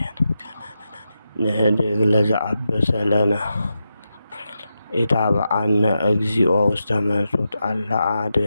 ንህድግ ለዘአበሰ ለነ ኢታብአነ እግዚኦ ውስተ መንሱት አላ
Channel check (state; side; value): inverted; both; correlation -0.88